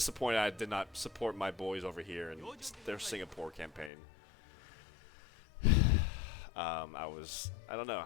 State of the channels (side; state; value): right; drops out; at 3.9 s